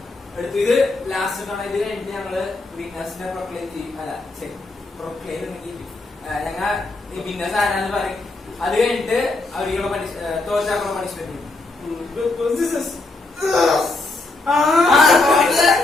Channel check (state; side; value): quieter; right; 3.2 dB